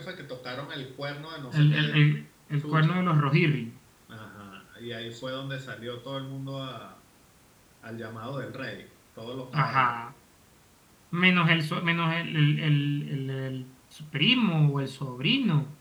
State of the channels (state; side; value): identical; both; correlation 1.00